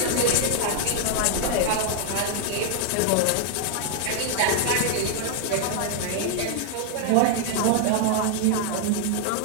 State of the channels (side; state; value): both; different; correlation 0.00